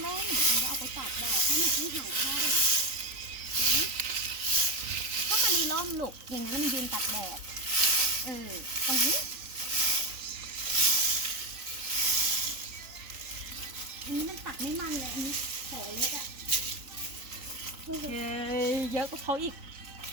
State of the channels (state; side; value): late; left; 3.9 ms